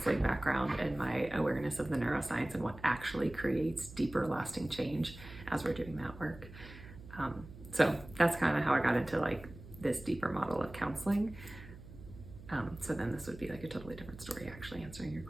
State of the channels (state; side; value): noise; right; hum, 16 dB below the sound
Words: background and my awareness of the neuroscience and what actually creates deeper, lasting change as we're doing that work. So that's kind of how I got into this deeper model of counseling. So then this would be a totally different story, actually, answering your